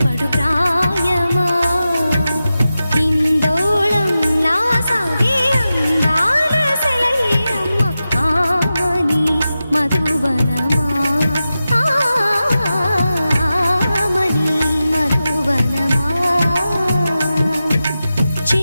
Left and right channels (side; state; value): both; inverted; correlation -0.93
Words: పడు ప్రాయమా. ఇందోళం నా సాగే అందాల సెలయేరమ్మ, ఆమని మధువనమా, ఆమని మధువనమా.